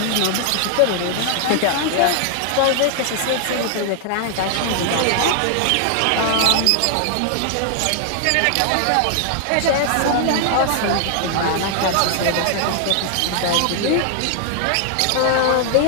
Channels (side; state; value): both; different; correlation 0.00